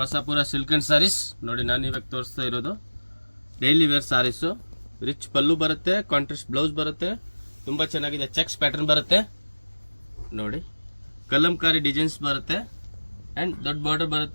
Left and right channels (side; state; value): both; inverted; correlation -1.00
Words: Asapura silk and sarees. ನೋಡಿ ನಾನು ಇವಾಗ ತೋರಿಸ್ತಾ ಇರೋದು daily wear sarees. Rich pallu ಬರುತ್ತೆ, ಕಾಂಟ್ರಾಸ್ಟ್ ಬ್ಲೌಸ್ ಬರುತ್ತೆ, ತುಂಬ ಚೆನ್ನಾಗಿದೆ. ಚೆಕ್ಸ್ ಪ್ಯಾಟರ್ನ್ ಬರುತ್ತೆ ನೋಡಿ, ಕಲಂಕಾರಿ ಡಿಸೈನ್ಸ್ ಬರುತ್ತೆ ಆ್ಯಂಡ್ ದೊಡ್ಡ ಬಾರ್ಡರ್